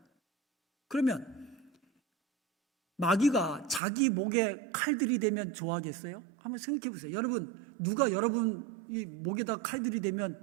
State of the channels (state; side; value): drops out; left; at 3.8 s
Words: 그러면 마귀가 자기 목에 칼들이 대면 좋아하겠어요? 한번 생각해 보세요. 여러분, 누가 여러분 이 목에다 칼들이